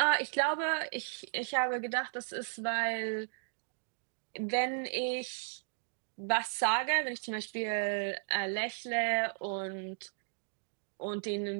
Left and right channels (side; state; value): left; silent; digital silence